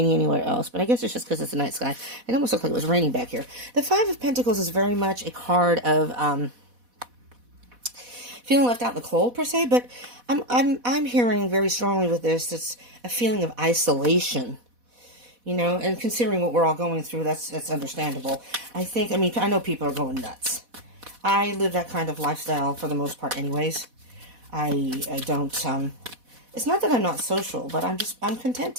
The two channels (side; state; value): left; late; 4.1 ms